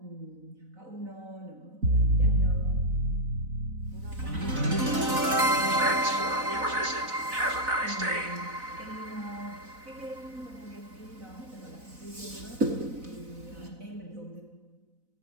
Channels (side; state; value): left; late; 4.0 ms